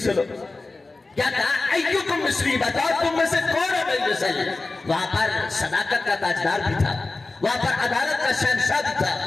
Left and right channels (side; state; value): right; quieter; 3.4 dB